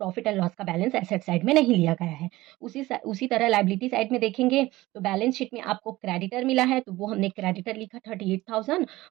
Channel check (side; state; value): left; quieter; 18.2 dB